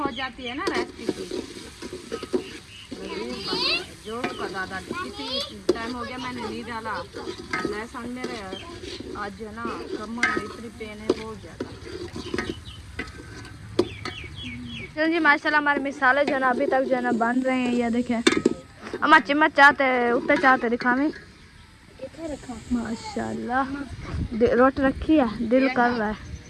हो जाती है ना रेसिपी की जो का दादा किसी टाइम हो गया मैंने नहीं डाला लहसुन मेरे आज जो है ना कमर में इतनी पेन है बहुत ज़्यादा। चलो जी माशाल्लाह हमारे मिसाले जो है ना अभी तक जो है ना बन रहे हैं ये देखें अम्मा चम्मच चाहते उत्ते चाहते दिखावे माशाल्लाह रोटी रखी है दिल कर रहा है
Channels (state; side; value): identical; both; correlation 1.00